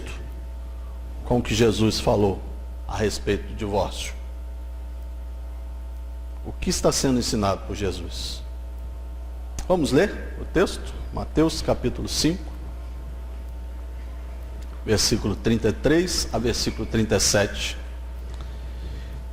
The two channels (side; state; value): both; identical; correlation 1.00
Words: com o que Jesus falou a respeito do divórcio? O que está sendo ensinado por Jesus? Vamos ler o texto? Mateus capítulo 5, versículo 33 a versículo 37.